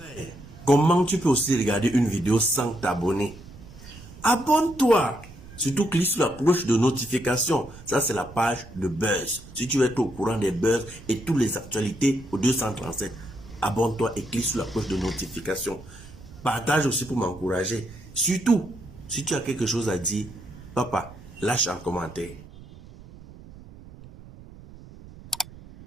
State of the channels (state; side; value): noise; right; rumble, 18 dB below the sound